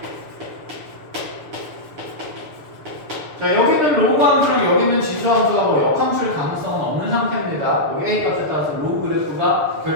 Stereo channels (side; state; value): left; late; 7.0 ms